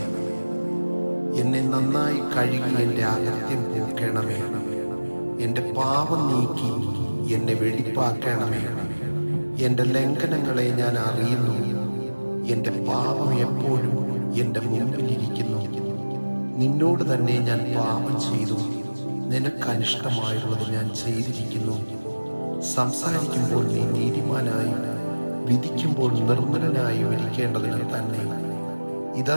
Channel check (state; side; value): inverted; both; correlation -1.00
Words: എന്നെ നന്നായി കഴുകി എൻ്റെ അകത്യം പോക്കണമേ. എൻ്റെ പാപം നീക്കി എന്നെ വെടിപ്പാക്കണമേ. എൻ്റെ ലംഘനങ്ങളെ ഞാൻ അറിയുന്നു. എൻ്റെ പാപം എപ്പോഴും എൻ്റെ മുമ്പിലിരിക്കുന്നു. നിന്നോട് തന്നെ ഞാൻ പാപം ചെയ്തു. നിനക്കനിഷ്ടമായുള്ളത് ഞാൻ ചെയ്തിരിക്കുന്നു. സംസാരിക്കുമ്പോൾ നീ നീതിമാനായും വിധിക്കുമ്പോൾ നിർമ്മലനായും ഇരിക്കേണ്ടതിന് തന്നെ. ഇതാ,